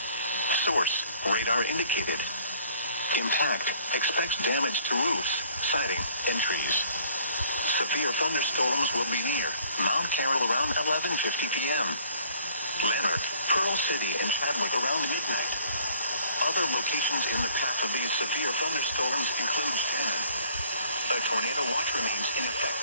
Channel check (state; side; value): inverted; both; correlation -0.58